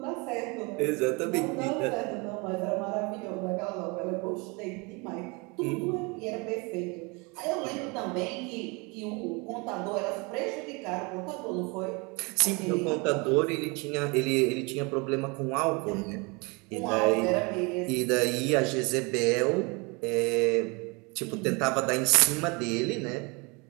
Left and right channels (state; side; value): quieter; left; 28.9 dB